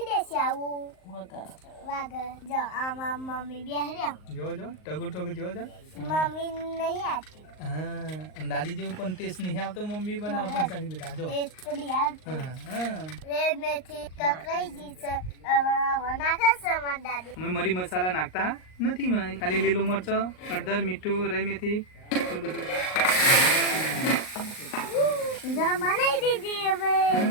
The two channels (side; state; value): right; late; 38 ms